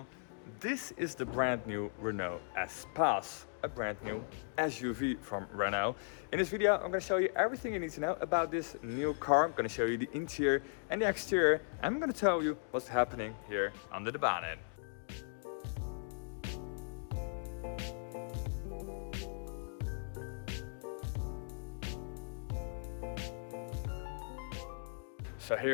This is the brand new Renault Espace, a brand new SUV from Renault. In this video, I'm going to show you everything you need to know about this new car. I'm going to show you the interior and the exterior. I'm going to tell you what's happening here under the bonnet. So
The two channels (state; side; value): silent; right; digital silence